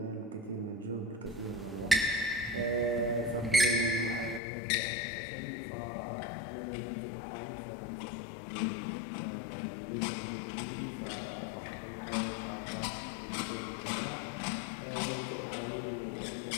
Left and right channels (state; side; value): drops out; right; at 4.4 s